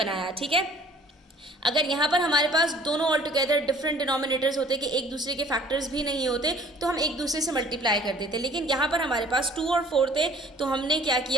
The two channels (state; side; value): normal; both; correlation 0.53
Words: ठीक है। अगर यहाँ पर हमारे पास दोनों ऑल टुगेदर डिफरेंट डिनोमिनेटर्स होते कि एक दूसरे के फैक्टर्स भी नहीं होते तो हम एक दूसरे से मल्टीप्लाई कर देते, लेकिन यहाँ पर हमारे पास 2 और 4 थे तो हमने क्या